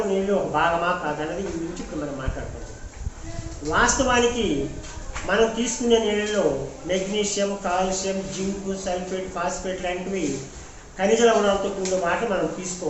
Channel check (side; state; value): both; identical; correlation 1.00